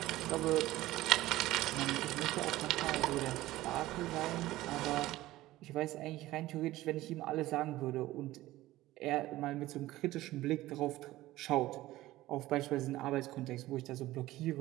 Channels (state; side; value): quieter; left; 16.6 dB